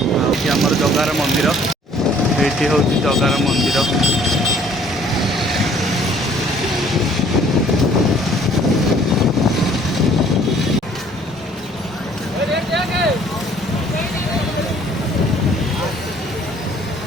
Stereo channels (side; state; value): both; normal; correlation 0.57